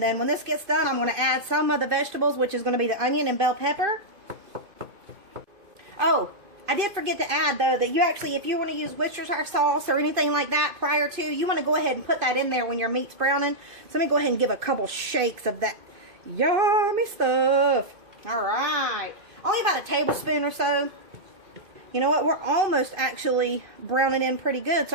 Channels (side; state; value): left; late; 2.5 ms